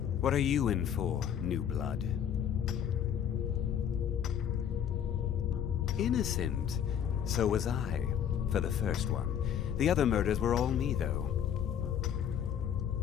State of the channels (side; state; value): right; quieter; 9.0 dB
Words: What are you in for, new blood? Innocent. So was I, for the first one. The other murders were all me, though.